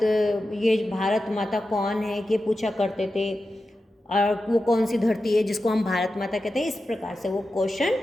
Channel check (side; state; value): both; normal; correlation 0.92